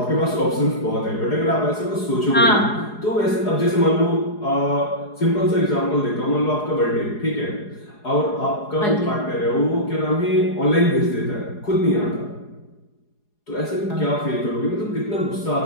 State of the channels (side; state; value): right; late; 4.8 ms